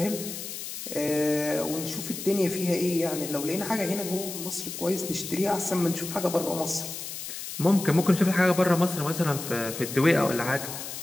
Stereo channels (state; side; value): noise; left; hiss, 8 dB below the sound